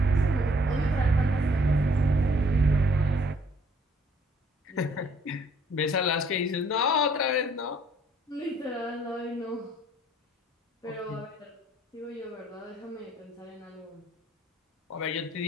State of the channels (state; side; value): normal; both; correlation 0.61